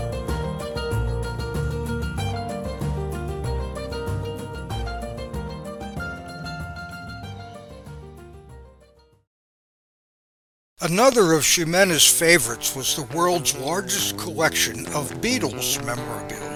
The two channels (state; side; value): identical; both; correlation 1.00